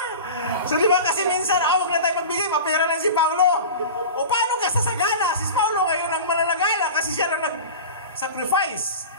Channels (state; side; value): inverted; both; correlation -0.32